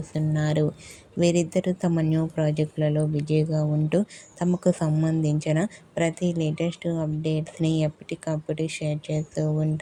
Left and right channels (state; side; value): identical; both; correlation 1.00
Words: వీరిద్దరూ తమ న్యూ ప్రాజెక్టులలో బిజీగా ఉంటూ తమకు సంబంధించిన ప్రతి లేటెస్ట్ అప్డేట్స్ని ఎప్పటికప్పుడు షేర్ చేస్తూ